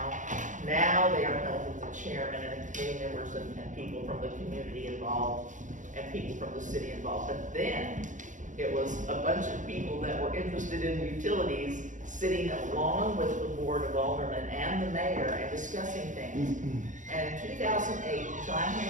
Now they are held with the chairman and the committee members and people from the community involved and people from the city involved. But then, it was a bunch of people that were interested in utilities sitting along with the board of aldermen and the mayor and discussing things. And in 2008, John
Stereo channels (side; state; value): left; late; 0.37 ms